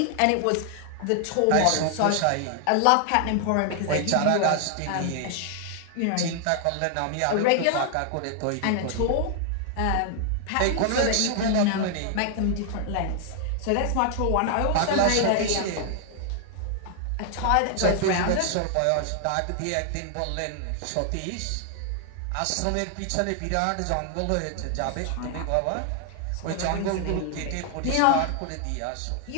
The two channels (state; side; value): different; both; correlation 0.00